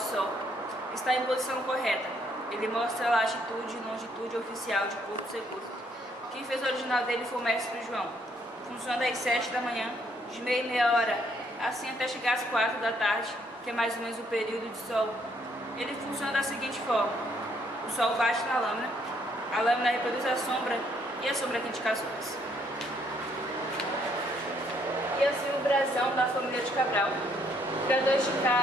Está em posição correta. Ele mostra a latitude e longitude oficial de Porto Seguro. Quem fez o original dele foi o mestre João. Funciona das 7 da manhã, de meia hora, assim até chegar às 4 da tarde, que é mais ou menos o período de sol. Ele funciona da seguinte forma: o sol bate na lâmina, A lâmina reproduz a sombra e a sombra tem indicações. E assim o brasão da família de Cabral, criadores de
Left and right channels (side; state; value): both; normal; correlation 0.69